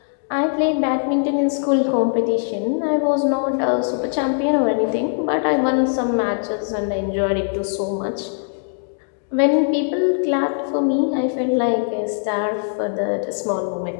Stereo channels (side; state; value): right; silent; digital silence